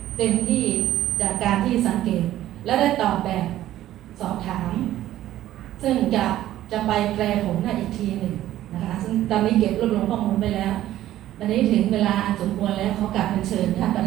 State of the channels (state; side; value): quieter; left; 13.5 dB